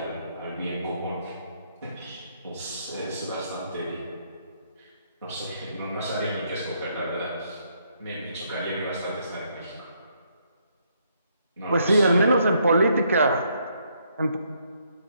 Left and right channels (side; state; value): both; inverted; correlation -0.72